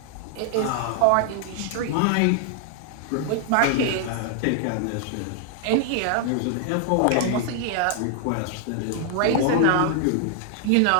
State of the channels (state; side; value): different; both; correlation 0.00